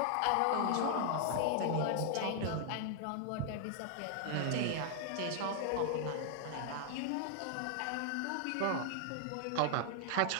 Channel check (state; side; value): different; both; correlation 0.00